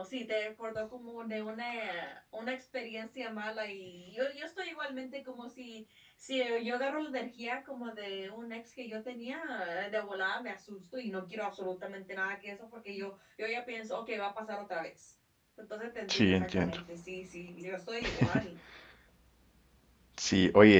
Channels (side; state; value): both; identical; correlation 1.00